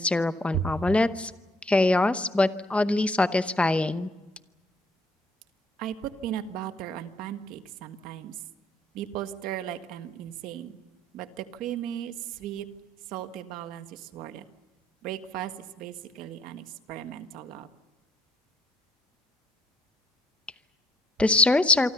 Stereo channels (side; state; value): both; normal; correlation 0.64